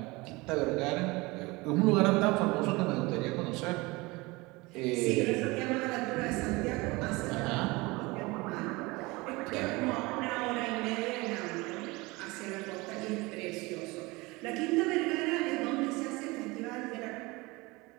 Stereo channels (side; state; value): left; quieter; 23.4 dB